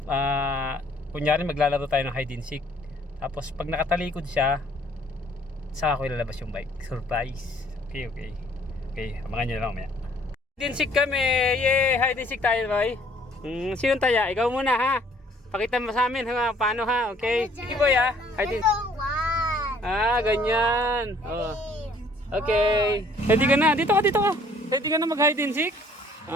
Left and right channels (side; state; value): both; normal; correlation 0.59